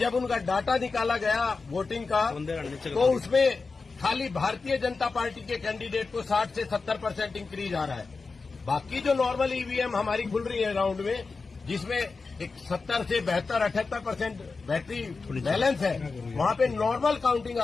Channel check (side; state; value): right; quieter; 4.3 dB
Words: उनका डाटा निकाला गया वोटिंग का तो उसमें खाली भारतीय जनता पार्टी के कैंडिडेट को 60 से 70% इंक्रीज आ रहा है। बाकी जो नॉर्मल ईवीएम हमारी खुल रही है राउंड में, जिसमें एक 70 से 72-78% बैटरी बैलेंस है, वहां पे नॉर्मल काउंटिंग